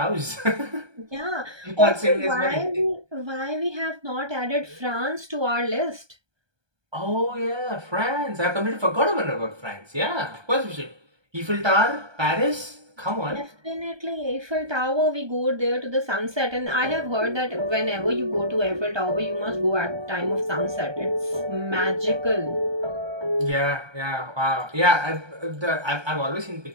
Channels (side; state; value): left; late; 1.2 ms